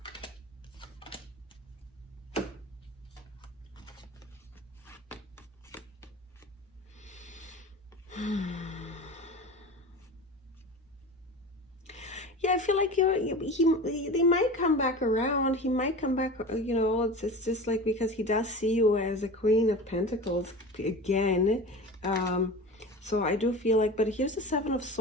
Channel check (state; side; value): normal; both; correlation 0.32